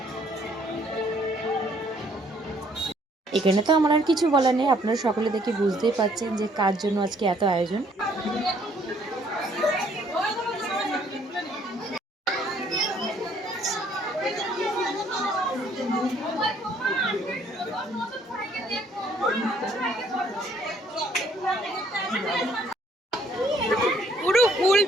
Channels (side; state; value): both; normal; correlation 0.64